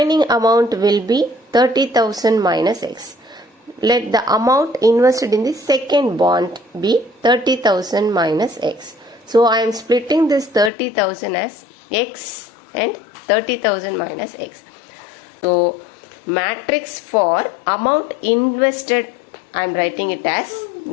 amount will be 30,000 minus X. Let the amount invested in the second bond be 30,000 minus X. So I am splitting this 30,000 as X and 30,000 minus X. So matrix for amount invested, I am writing it as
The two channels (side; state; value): right; drops out; at 10.7 s